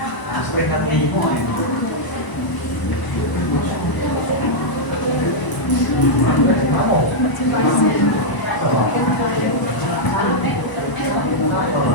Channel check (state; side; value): late; right; 1.0 ms